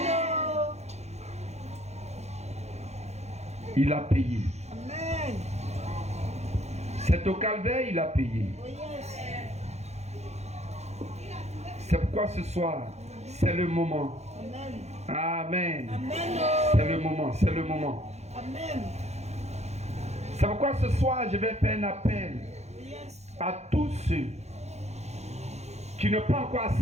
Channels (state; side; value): late; left; 0.32 ms